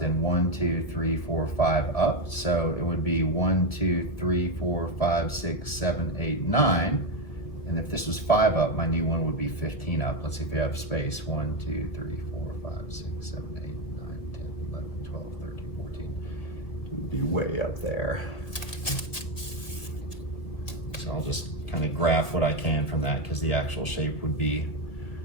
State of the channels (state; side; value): late; right; 1.7 ms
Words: and 1, 2, 3, 4, 5 up. So it would be 1, 2, 3, 4, 5, 6, 7, 8, 9. And if this was 5 up, my new one would be 15 up. Let's see if we have space. 1, 2, 3, 4, 5, 6, 7, 8, 9, 10, 11, 12, 13, 14. It would be way up there. So I'll just kind of graph what I can from that, because the actual shape would be